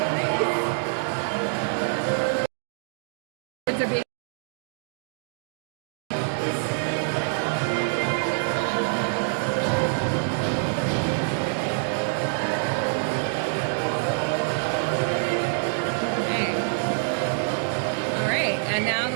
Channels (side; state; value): left; silent; digital silence